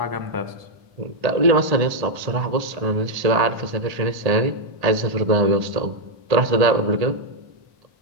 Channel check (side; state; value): left; late; 1.8 ms